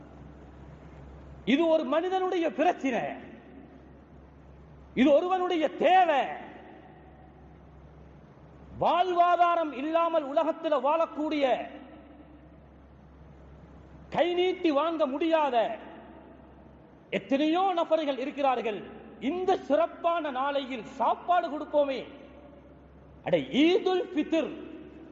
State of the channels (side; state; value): both; identical; correlation 1.00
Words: இது ஒரு மனிதனுடைய பிரச்சனை, இது ஒருவனுடைய தேவை. வாழ்வாதாரம் இல்லாமல் உலகத்தில் வாழக்கூடிய, கை நீட்டி வாங்க முடியாத எத்தனையோ நபர்கள் இருக்கிறார்கள். இந்த சிறப்பான நாளையில் சாப்பாடு கொடுப்போமே. அட, ஈதுல் ஃபித்ர்